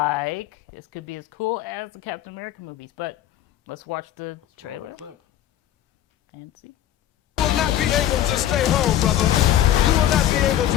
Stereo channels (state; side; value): quieter; right; 12.0 dB